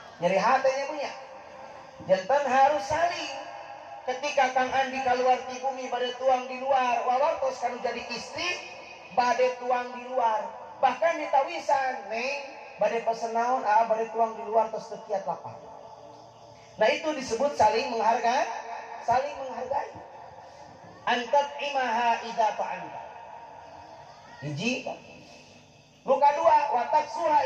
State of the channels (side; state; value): both; identical; correlation 1.00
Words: Nyeri hatenya punya. Janten harus saling. Ketika Kang Andi keluar di bumi bade tuang di luar, wawartos kanu jadi istri bade tuang di luar. Bahkan ditawisan, Neng, bade pesen naon, bade tuang di luar tos teu kiat lapar. Nah itu disebut saling menghargai, saling menghargai. Antat imaha idza ta'anta. Hiji. Nu kadua, watak